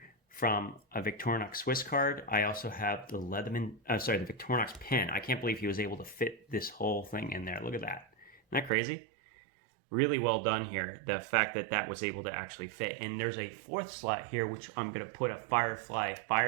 from a Victorinox Swiss card. I also have the the Victorinox pen. I can't believe he was able to fit this whole thing in there. Look at that. Isn't that crazy? Really well done here. The fact that that was able to actually fit. And there's a 4th slot here, which I'm going to put a Firefly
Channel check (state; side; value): drops out; left; at 8.7 s